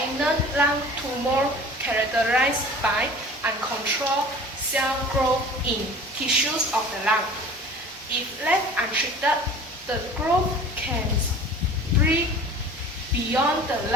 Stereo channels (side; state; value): both; normal; correlation 0.42